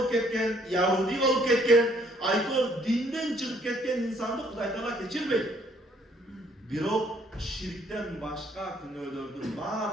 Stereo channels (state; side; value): normal; both; correlation 0.64